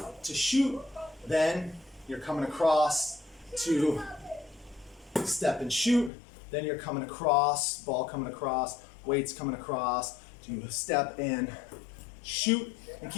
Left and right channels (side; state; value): right; drops out; at 6.1 s